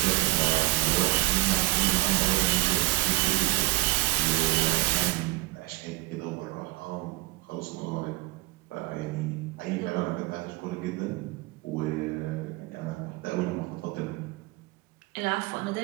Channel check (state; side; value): quieter; left; 21.4 dB